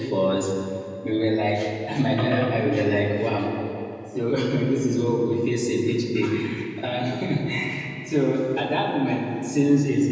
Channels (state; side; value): identical; both; correlation 1.00